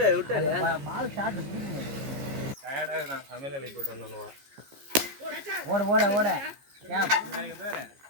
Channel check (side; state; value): left; late; 15 ms